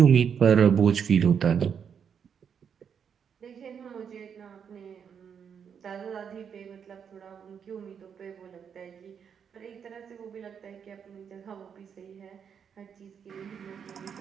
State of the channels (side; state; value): left; quieter; 7.4 dB